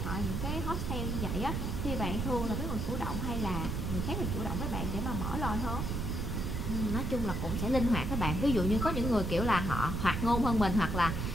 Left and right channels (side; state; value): right; noise; rumble, 1 dB below the sound